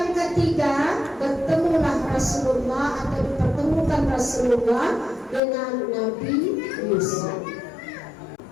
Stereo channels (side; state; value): right; drops out; at 5.4 s